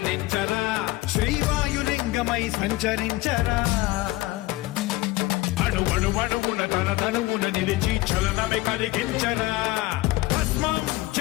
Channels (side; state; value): right; quieter; 19.1 dB